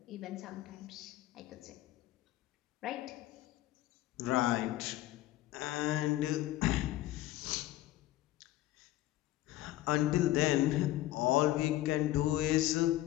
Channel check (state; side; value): quieter; right; 15.6 dB